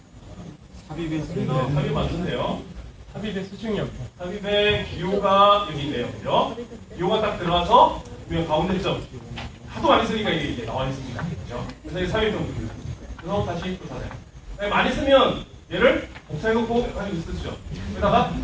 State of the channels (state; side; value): identical; both; correlation 1.00